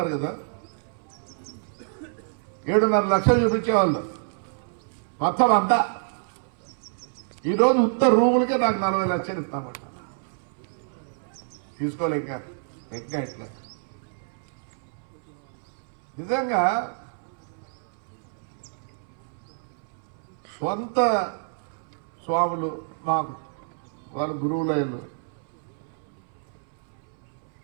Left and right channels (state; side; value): silent; left; 60 dB below the other